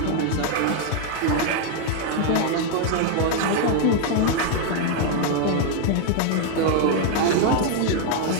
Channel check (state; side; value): different; both; correlation 0.00